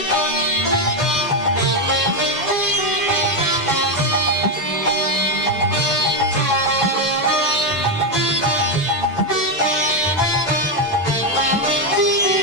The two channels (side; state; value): both; normal; correlation 0.06